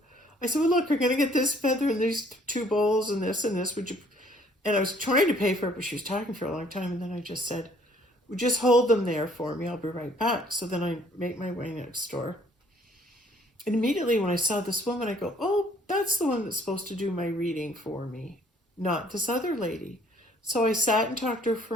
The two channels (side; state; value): both; normal; correlation 0.60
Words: I said, well, look, we're going to get this feather and these 2 bowls and this, would you? And I was trying to pay for it, but she was talking for a long time, and then I just said, well, just hold them there for me, I'll be right back. So then I make my way next door. And immediately when I saw this woman, I go, oh, that's the one that's supposed to do my reading for me, not this other lady. So I sat and talked to her